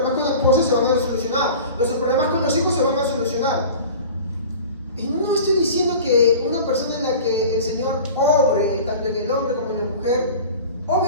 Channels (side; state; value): both; inverted; correlation -0.39